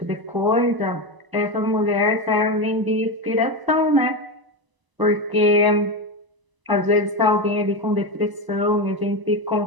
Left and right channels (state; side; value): late; left; 1.0 ms